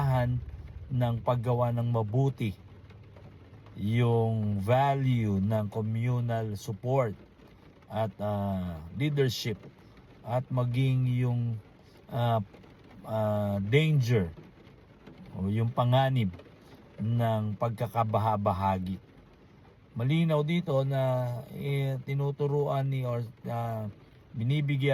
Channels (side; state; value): both; identical; correlation 1.00